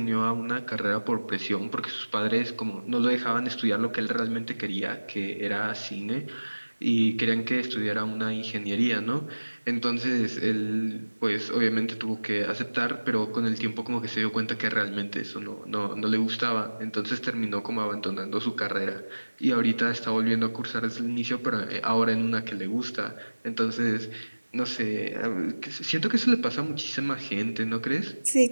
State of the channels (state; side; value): inverted; both; correlation -1.00